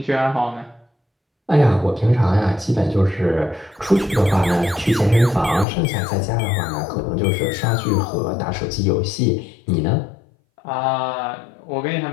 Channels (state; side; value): drops out; right; at 5.7 s